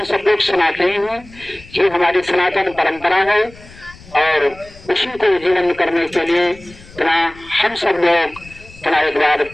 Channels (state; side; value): noise; left; rumble, 21 dB below the sound